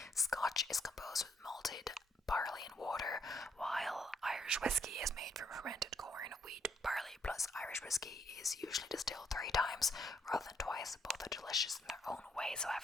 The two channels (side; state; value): both; normal; correlation 0.71